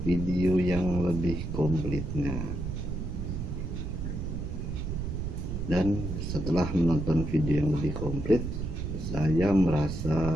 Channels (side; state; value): right; noise; rumble, 4 dB below the sound